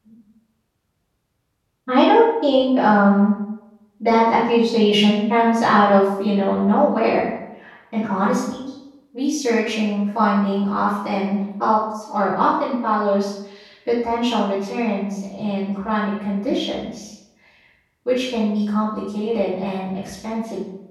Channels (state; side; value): identical; both; correlation 1.00